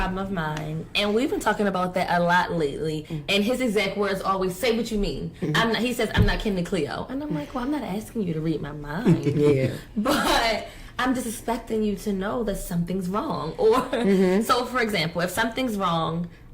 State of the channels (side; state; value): both; identical; correlation 1.00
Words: of mine, and we've been talking about that a lot lately. Mm-hmm. And his exact words always, "Say what you mean." Mm-hmm. He says, "I'm not Kim and Cleo," and I'm like, "Well, I'm not asking you to read my mind, yeah, but I'm just expecting you to know that something's wrong." Or so, for example, if something's wrong,